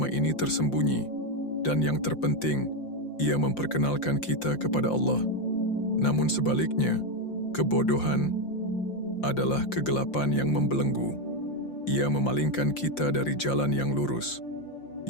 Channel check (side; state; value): right; late; 5.7 ms